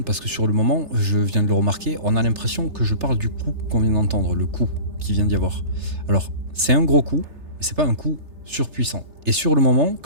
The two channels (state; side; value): late; left; 3.3 ms